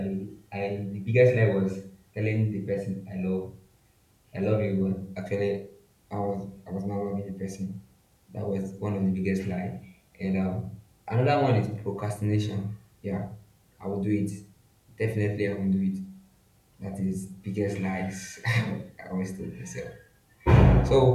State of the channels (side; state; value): both; identical; correlation 1.00